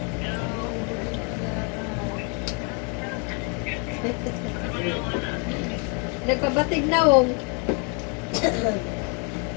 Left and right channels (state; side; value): quieter; right; 36.2 dB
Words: Nagpabatig na wong.